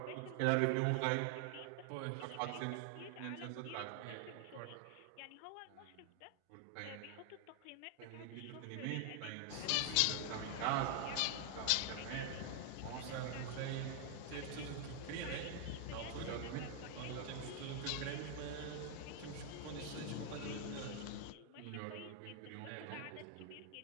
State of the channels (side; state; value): both; different; correlation 0.00